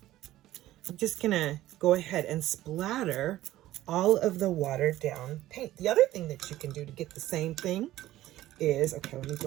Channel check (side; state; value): left; quieter; 14.8 dB